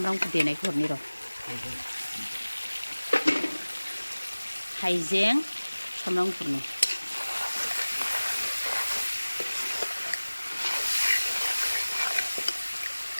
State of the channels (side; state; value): both; inverted; correlation -1.00